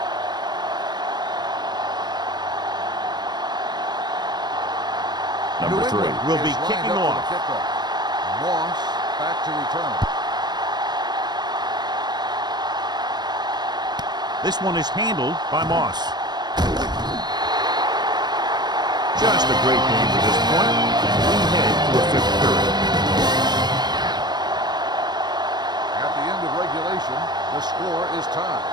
Number 3 will be kicking off. Moss back to return. This one is handled by Moss. Just a great game to this point. We head to a 5th period. At the end of regulation, the score is tied.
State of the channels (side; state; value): left; late; 0.20 ms